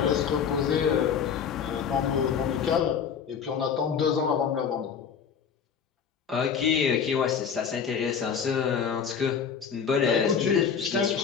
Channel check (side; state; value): right; quieter; 7.0 dB